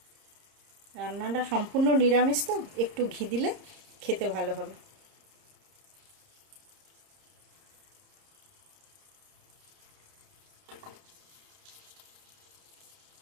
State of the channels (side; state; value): left; late; 30 ms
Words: রান্নাটা সম্পূর্ণ নিরামিষ তো একটু ঘি দিলে খেতে ভালো হবে।